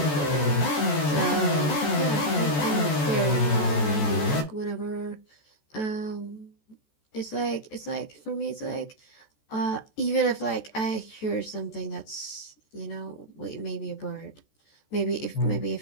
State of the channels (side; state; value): right; late; 14 ms